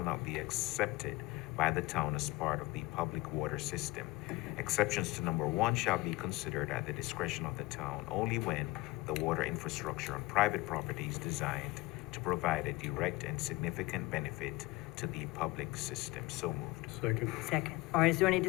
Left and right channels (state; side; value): quieter; right; 21.5 dB